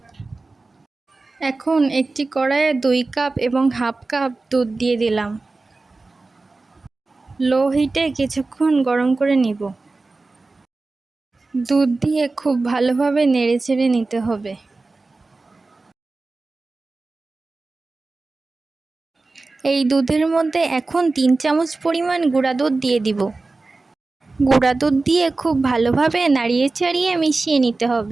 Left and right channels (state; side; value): quieter; left; 3.5 dB